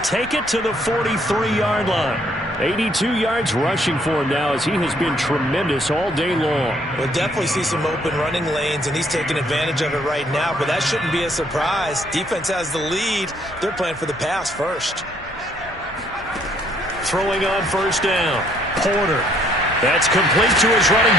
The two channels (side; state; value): both; normal; correlation 0.66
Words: it to the 43-yard line. 82 yards rushing for him now as he has been tremendous all day long. We'll definitely see some open running lanes, and he's taking advantage of it right now, but that shouldn't be a surprise. Defense has the lead. They're playing for the pass first. Throwing on first down. Porter. That's complete to his running